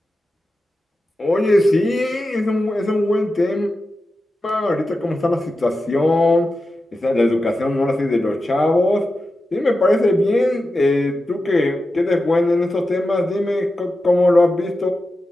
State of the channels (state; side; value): normal; both; correlation 0.91